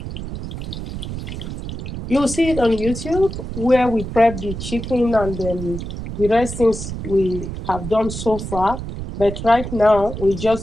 You'll see it on YouTube where we prep the chicken and the rest things we have done so far. But right now, we're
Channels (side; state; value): right; noise; rumble, 7 dB below the sound